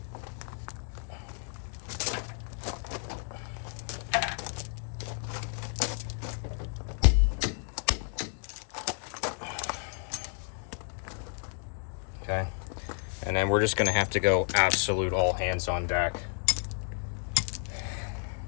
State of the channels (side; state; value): right; silent; 57 dB below the other